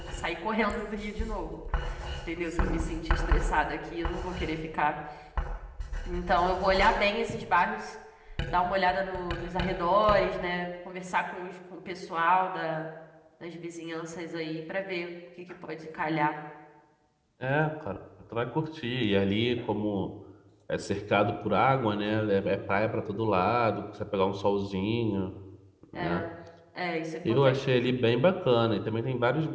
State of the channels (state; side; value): identical; both; correlation 1.00